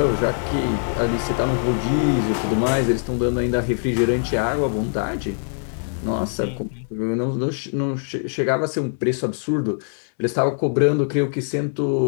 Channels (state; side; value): silent; right; 64 dB below the other